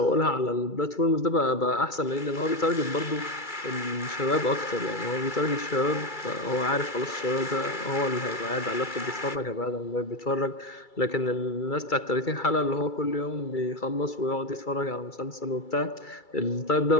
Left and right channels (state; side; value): late; right; 2.3 ms